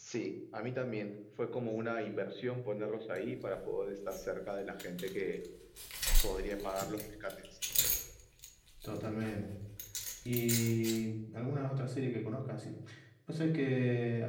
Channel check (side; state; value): both; identical; correlation 1.00